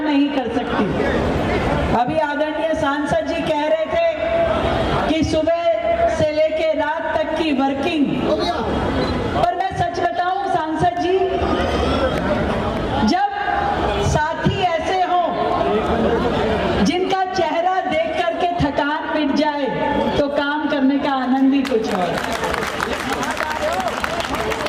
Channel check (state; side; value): identical; both; correlation 1.00